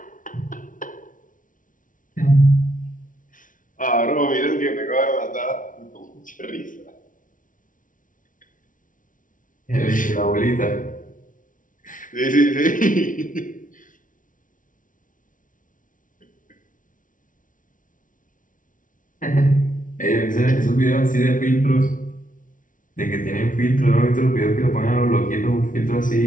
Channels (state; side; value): late; right; 0.38 ms